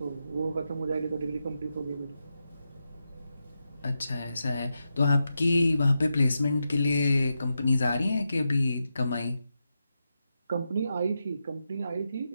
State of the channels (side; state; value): both; inverted; correlation -0.87